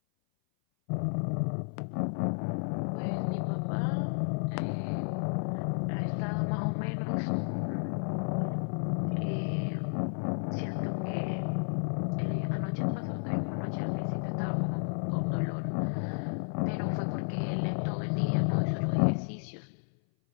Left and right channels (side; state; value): right; silent; 56 dB below the other